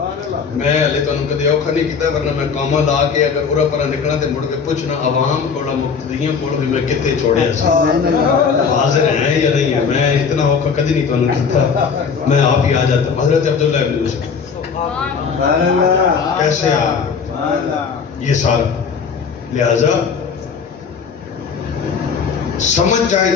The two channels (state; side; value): quieter; right; 5.9 dB